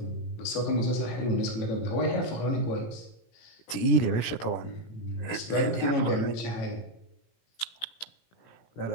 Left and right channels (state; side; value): late; right; 17 ms